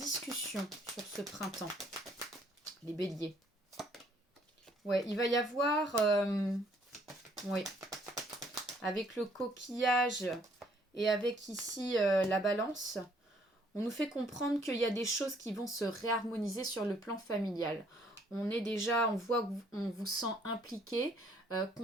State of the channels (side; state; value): both; normal; correlation 0.64